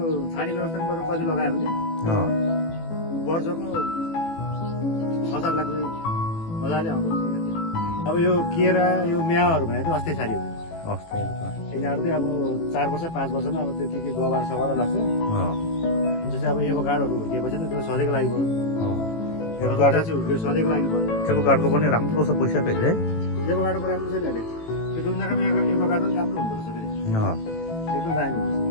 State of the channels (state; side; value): late; right; 18 ms